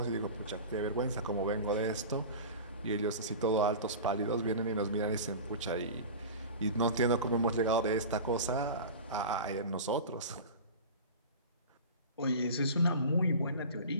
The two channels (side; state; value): both; inverted; correlation -0.33